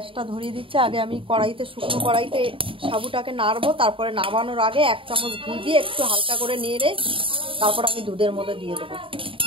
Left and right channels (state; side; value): late; left; 0.25 ms